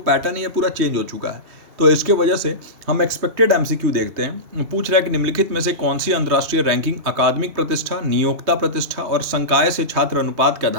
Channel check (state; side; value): late; left; 3.2 ms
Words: है ये पूरा चेंज हो चुका है। तो इसके वजह से हम एक्सपेक्टेड MCQ देखते हैं। पूछ रहा है कि निम्नलिखित में से कौन सी अंतर्राष्ट्रीय रैंकिंग अकादमिक प्रतिष्ठा, नियोक्ता प्रतिष्ठा और संकाय से छात्र अनुपात के